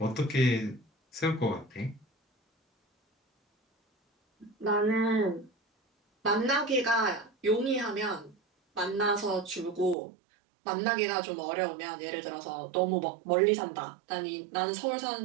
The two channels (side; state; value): left; drops out; at 10.0 s